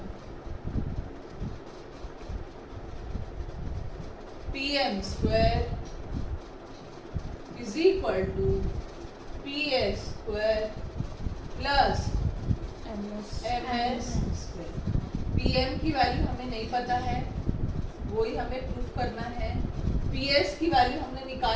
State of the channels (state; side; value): identical; both; correlation 1.00